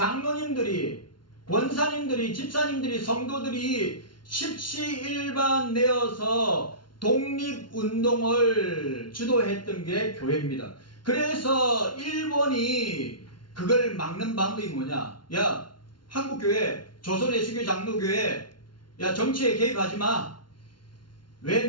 권사님들이, 집사님들이, 성도들이 십시일반 내어서 독립운동을 주도했던 게 교회입니다. 그래서 일본이 그걸 막는 방법이 뭐냐? 야, 한국교회, 조선예수교 장로교회, 야, 정치에 개입하지 마. 왜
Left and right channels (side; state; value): right; late; 0.71 ms